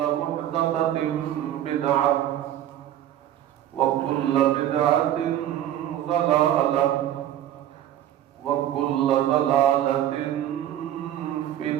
محدثة بدعة وكل بدعة ضلالة وكل ضلالة في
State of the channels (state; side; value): quieter; left; 11.8 dB